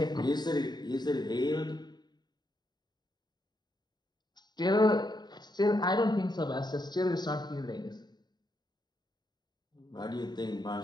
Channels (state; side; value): late; right; 0.20 ms